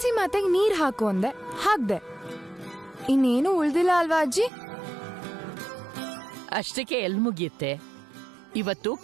ಮಾತೆಗೆ ನೀರ್ ಹಾಕು ಅಂದೆ, ಹಾಕ್ದೆ. ಇನ್ನೇನು ಉಳ್ದಿಲ್ಲ ಅಲ್ವಾ ಅಜ್ಜಿ? ಅಷ್ಟಕ್ಕೆ ಎಲ್ ಮುಗಿಯುತ್ತೆ. ಇವತ್ತು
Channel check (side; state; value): left; drops out; at 4.5 s